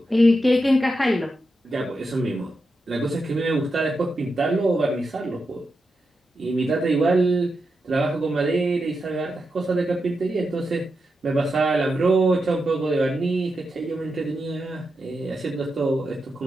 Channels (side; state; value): both; normal; correlation 0.87